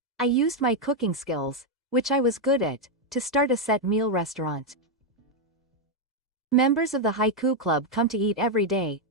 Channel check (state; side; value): normal; both; correlation 0.01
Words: I used my cooking skills, which I was good at, to start a set meal restaurant. Members of the Haiku Club come to eat every day,